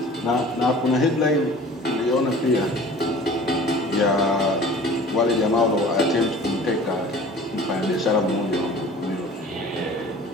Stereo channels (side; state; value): both; normal; correlation 0.45